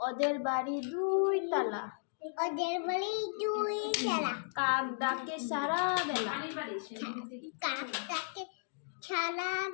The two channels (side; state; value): right; silent; digital silence